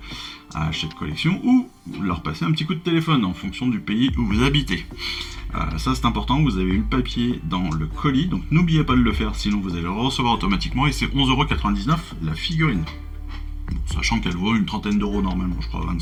à Hachette Collection ou leur passer un petit coup de téléphone en fonction du pays où vous habitez. Ça c'est important, vous avez eu le papier dans le colis, donc n'oubliez pas de le faire, sinon vous allez le recevoir automatiquement, et c'est 11,99€ la figurine. Bon, sachant qu'elle vaut une trentaine d'euros normalement, je crois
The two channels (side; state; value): both; identical; correlation 1.00